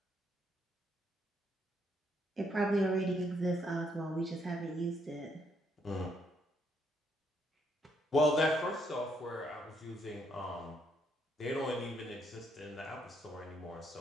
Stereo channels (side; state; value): both; normal; correlation 0.73